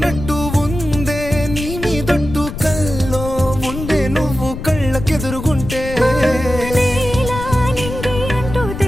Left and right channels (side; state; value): left; noise; rumble, 8 dB below the sound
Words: ఉందే నీ మీదొట్టు, కల్లో ఉండే నువ్వు కళ్ళకెదురుగుంటే. నీలా నింగి అంటూ